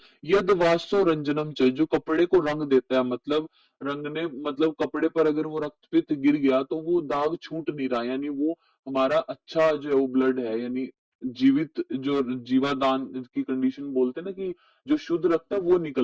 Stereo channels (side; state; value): both; identical; correlation 1.00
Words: यद वाष्यो रंजनम च, जो कपड़े को रंग देता है, मतलब रंगने, मतलब कपड़े पर अगर वो रक्तपित गिर गया तो वो दाग छूट नहीं रहा, यानी वो हमारा अच्छा जो है वो ब्लड है, यानी जीवित जो जीवादान की कंडीशन बोलते हैं ना, कि जो शुद्ध रक्त है वो